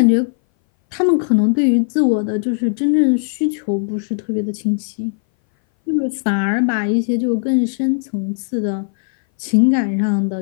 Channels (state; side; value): silent; right; 60 dB below the other